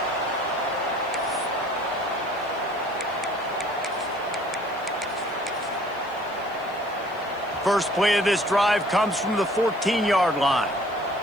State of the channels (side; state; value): left; noise; hiss, 28 dB below the sound